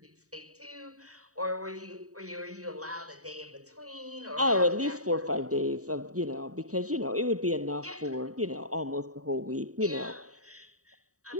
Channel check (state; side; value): late; left; 0.66 ms